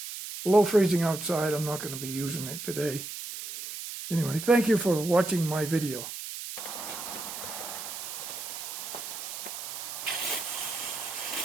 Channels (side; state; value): right; noise; hiss, 8 dB below the sound